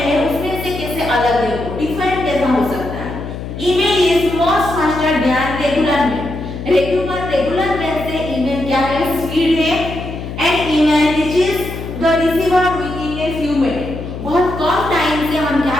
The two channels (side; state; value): left; noise; hum, 8 dB below the sound